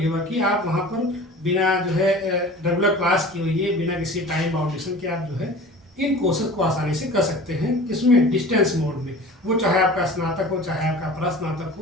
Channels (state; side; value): normal; both; correlation 0.40